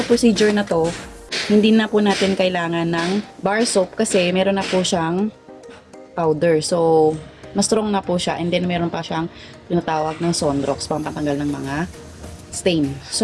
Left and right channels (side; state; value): both; identical; correlation 1.00